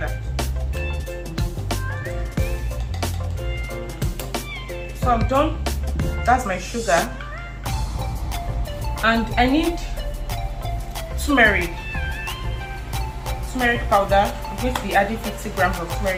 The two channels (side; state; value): both; identical; correlation 1.00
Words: So I'm done. That's my sugar, and I need turmeric powder. I'm going to be adding 50 grams of